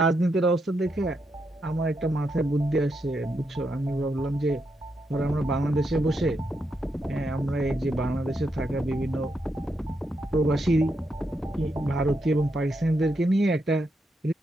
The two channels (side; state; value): both; normal; correlation 0.82